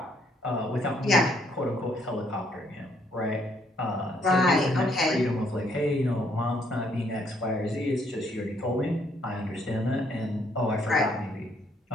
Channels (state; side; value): normal; both; correlation 0.68